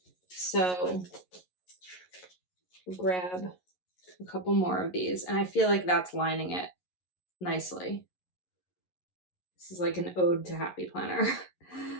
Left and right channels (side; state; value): right; late; 11 ms